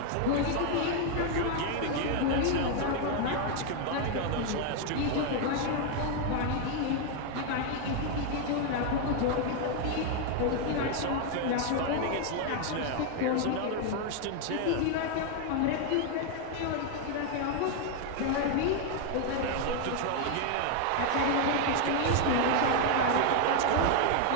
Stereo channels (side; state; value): both; different; correlation 0.01